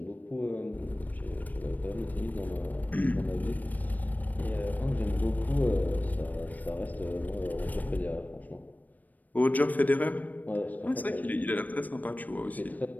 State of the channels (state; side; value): late; right; 0.082 ms